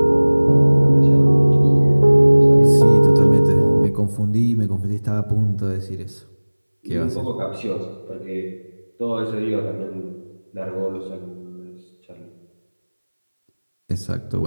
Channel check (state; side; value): inverted; both; correlation -1.00